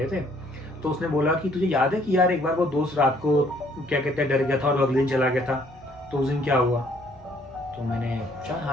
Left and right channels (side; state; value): both; normal; correlation 0.63